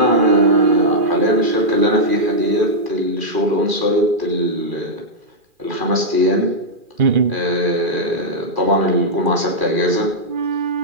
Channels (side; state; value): left; late; 2.4 ms